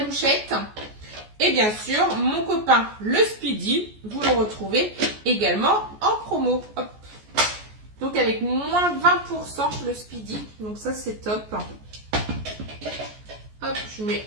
louchette. Et bien sûr, mon copain le Speedy, vous le retrouvez également en promo. Hop. Donc avec moins 20% le Speedy. Donc ça, c'est top. Hop, je mets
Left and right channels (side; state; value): left; late; 14 ms